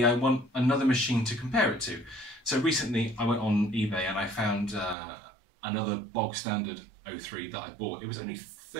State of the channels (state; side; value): drops out; left; at 5.0 s